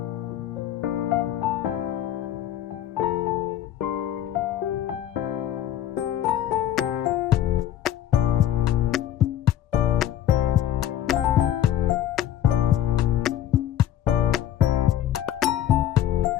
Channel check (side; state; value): right; quieter; 11.4 dB